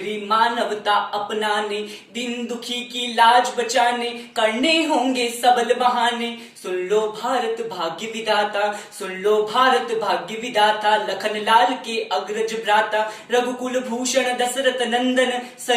मानवता अपनाने, दिन दुखी की लाज बचाने, करने होंगे सबल बहाने। सुन लो भारत भाग्य विधाता, सुन लो भारत भाग्य विधाता, लखन लाल के अग्रज भ्राता, रघुकुल भूषण दशरथ नंदन,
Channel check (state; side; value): identical; both; correlation 1.00